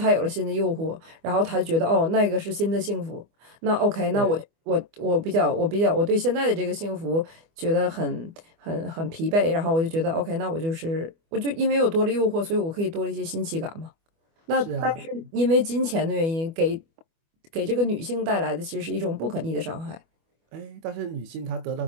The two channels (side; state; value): left; late; 25 ms